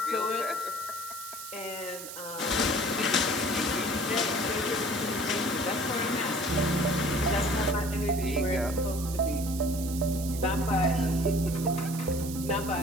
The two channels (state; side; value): noise; right; hiss, 10 dB below the sound